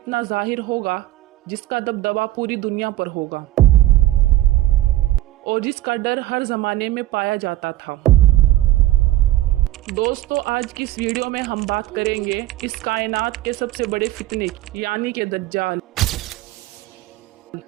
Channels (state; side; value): quieter; left; 15.5 dB